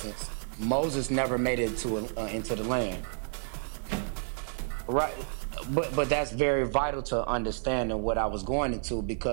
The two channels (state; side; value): silent; left; 58 dB below the other